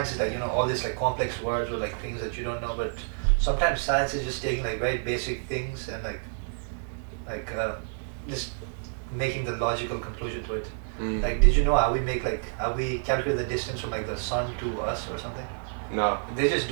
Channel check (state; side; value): silent; left; 59 dB below the other